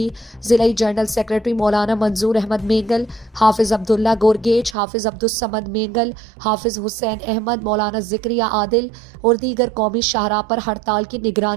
ضلعی جنرل سیکریٹری مولانا منظور احمد مینگل، حافظ عبداللہ گورگیچ، حافظ عبدالصمد مینگل، حافظ حسین احمد، مولانا ذکریہ عادل اور دیگر قومی شاہراہ پر ہڑتال کی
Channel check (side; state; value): left; drops out; at 4.8 s